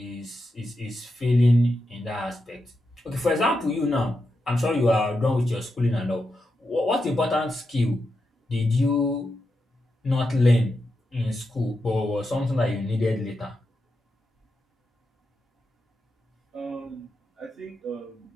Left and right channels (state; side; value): normal; both; correlation 0.87